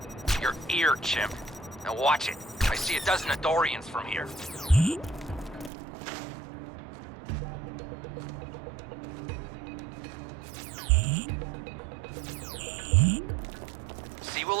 Your ear, chimp. Now watch it. I see a dozen Adorians from here. C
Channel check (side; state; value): left; drops out; at 5.7 s